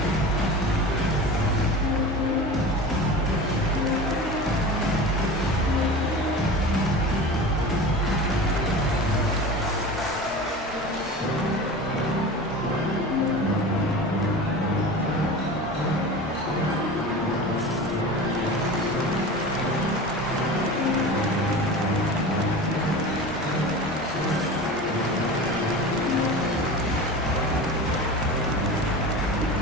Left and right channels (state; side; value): normal; both; correlation 0.33